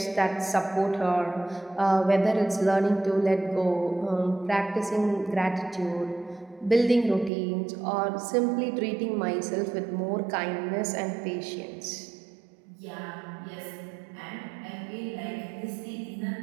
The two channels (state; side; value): drops out; left; at 7.3 s